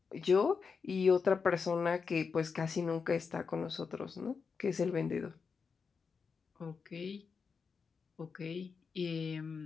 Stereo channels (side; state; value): right; quieter; 5.5 dB